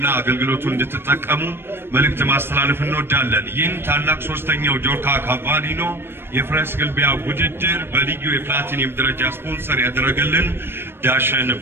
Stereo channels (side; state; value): left; late; 0.11 ms